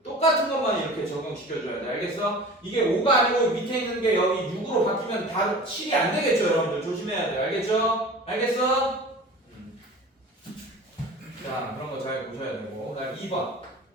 똑같은 것만 이렇게 적용시켜줘야 돼. 알겠어? 이게 5가 아니고 밑에 있는 게 여기 6으로 바뀌면 다 7이 안 되겠죠, 여러분들. 조심해야 돼. 알겠죠? 알겠어? 자, 그런 거 잘 보셔야 되고. 그다음 2번.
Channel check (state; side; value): normal; both; correlation 0.39